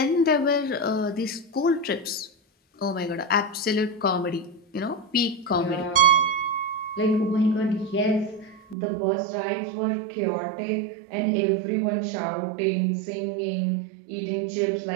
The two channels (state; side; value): drops out; left; at 8.8 s